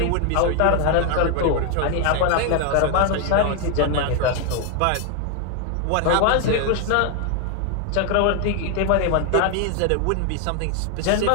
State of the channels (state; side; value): different; both; correlation 0.01